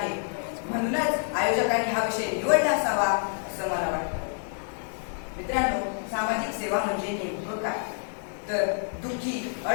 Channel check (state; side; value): silent; right; 59 dB below the other